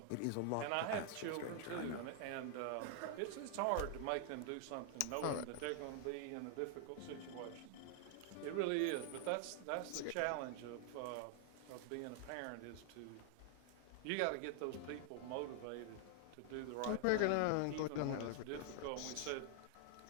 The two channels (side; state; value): both; different; correlation 0.00